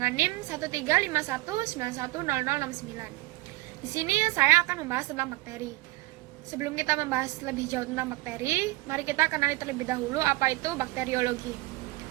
NIM 13519100069. Di sini saya akan membahas tentang bakteri. Sebelum kita membahas lebih jauh tentang bakteri, mari kita kenali terlebih dahulu apa itu bakteriologi.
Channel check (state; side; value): quieter; left; 20.5 dB